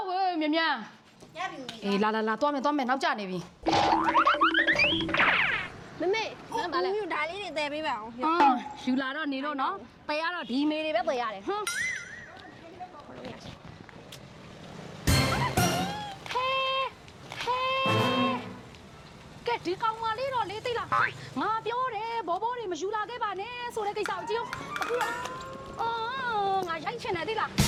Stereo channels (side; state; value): both; identical; correlation 1.00